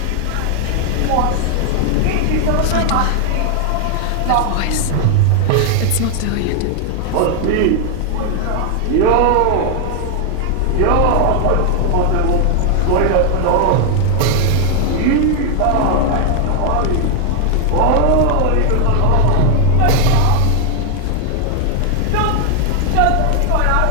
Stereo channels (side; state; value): both; different; correlation 0.00